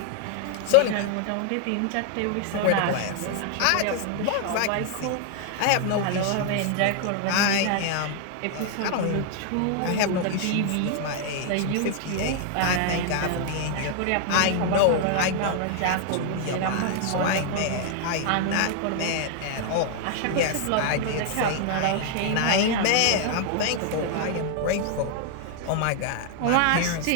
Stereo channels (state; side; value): different; both; correlation 0.00